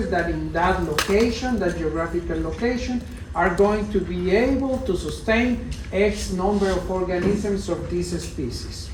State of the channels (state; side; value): identical; both; correlation 1.00